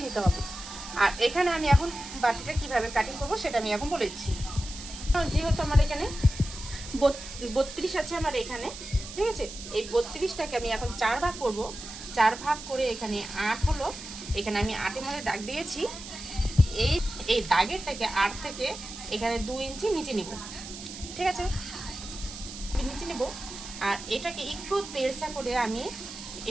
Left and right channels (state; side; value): noise; right; hiss, 12 dB below the sound